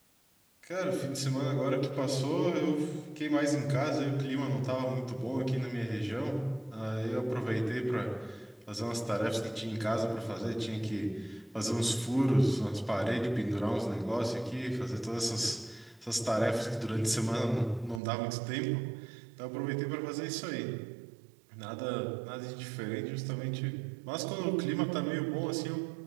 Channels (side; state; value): left; drops out; at 18.0 s